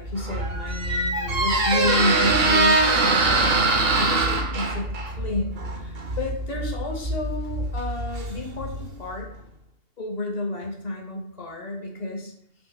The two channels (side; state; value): left; late; 2.8 ms